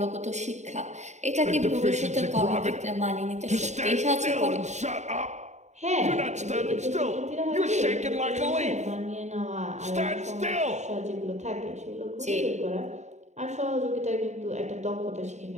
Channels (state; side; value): late; left; 0.34 ms